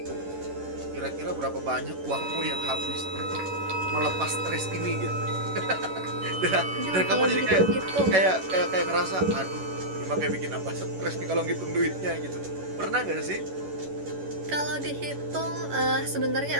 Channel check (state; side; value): late; left; 11 ms